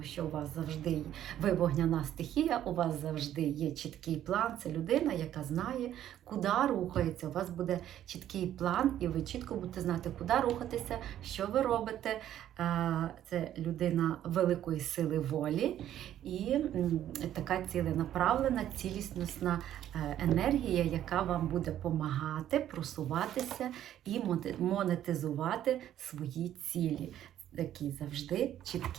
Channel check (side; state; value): left; quieter; 11.5 dB